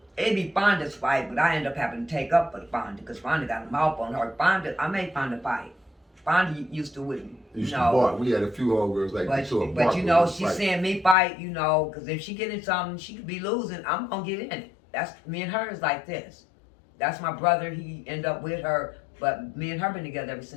it'd be Fonda's fight, but I ended up having to take up for the Fonda because Fonda got a mouth on her. I made Fonda fight. Fonda used to with me. Used to bark. We had a few homegirls like that too. But she's seeing me fight, because if she get in something, she could be losing. I'm gonna get in it. That's me and her is like this. That's my brother. He ended up with her, but me and her been together ever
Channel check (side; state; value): right; drops out; at 11.2 s